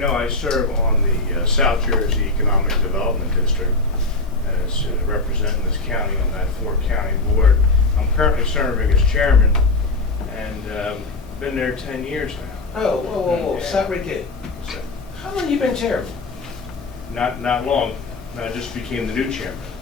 I serve on the South Jersey Economic Development District as representing this county on that 4-county board. I'm currently serving as chairman and been there 10 years now. Oh, whoa. Stop right there. So, How long you been chairman? not long. I just became the new chairman.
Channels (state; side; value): quieter; right; 3.4 dB